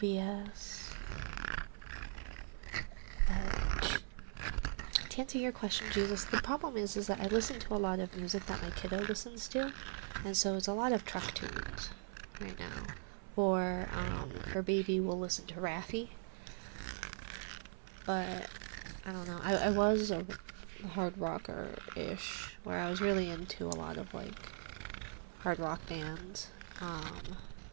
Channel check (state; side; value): silent; left; 51 dB below the other